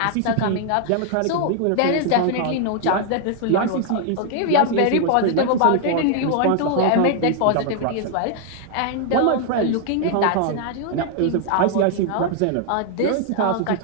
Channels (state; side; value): different; both; correlation 0.00